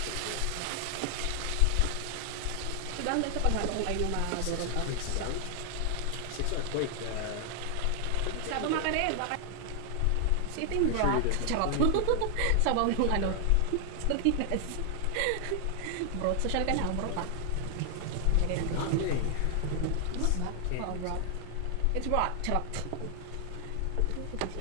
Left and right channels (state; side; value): different; both; correlation 0.00